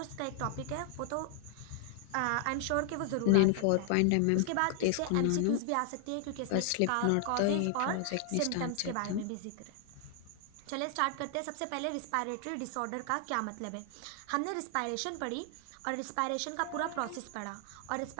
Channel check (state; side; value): different; both; correlation 0.00